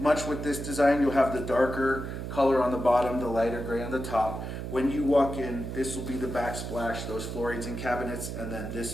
with this design, you'll have the darker color on the bottom, the lighter gray on the top. When you walk in, this will be the backsplash, those floorings and cabinets, and then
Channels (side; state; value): right; noise; hum, 6 dB below the sound